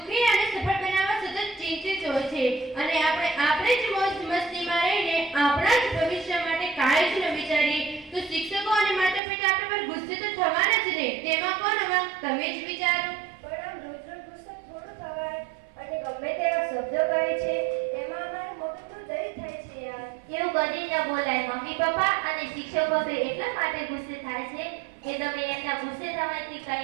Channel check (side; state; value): left; drops out; at 9.2 s